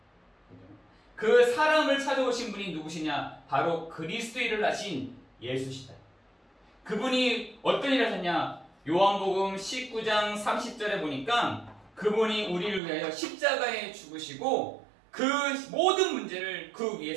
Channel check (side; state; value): left; drops out; at 12.8 s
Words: 그 사람을 찾아오신 분이 누구시냐? 바로 그리스도 일을 하신 예수시다. 그분이 어떤 일을 하셨냐? 요한복음 19장 30절에 보니까 그분이 우리를 위하여 십자가에 죽으시고 그 모든 문제를 그